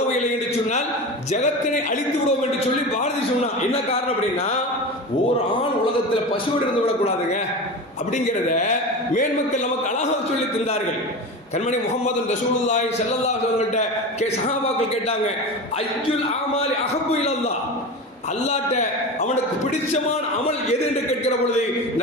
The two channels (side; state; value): both; normal; correlation 0.27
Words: இல்லை என்று சொன்னால் ஜகத்தினை அழித்து விடுவோம் என்று சொல்லி பாரதி சொன்னா. என்ன காரணம் அப்படின்னா, ஒரு ஆண் உலகத்தில் பசுவோடு இருந்து விடக்கூடாதுங்க அப்படிங்கிறத மேன்மக்கள் நமக்கு அழகாக சொல்லி தந்தார்கள். கண்மணி முஹம்மது ரசூலுல்லாஹி ஸல்லல்லாஹு அலைஹி வஸல்லம் சஹாபாக்கள் கேட்டாங்க, அய்யுல் அமாலி அஹப்பு இலல்லாஹ், அல்லாஹ்ட்ட அவனுக்கு பிடிச்சமான அமல் எது என்று கேட்கிற பொழுது